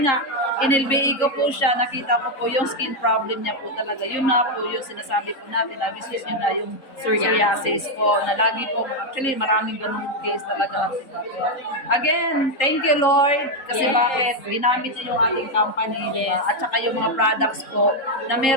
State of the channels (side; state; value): right; late; 3.7 ms